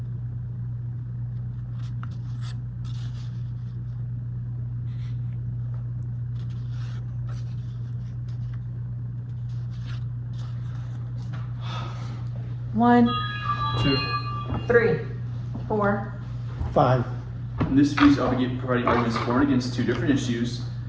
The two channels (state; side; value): identical; both; correlation 1.00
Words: One, 2. 3, 4. 5. In this speech, I'll be providing arguments for and against 2 different issues.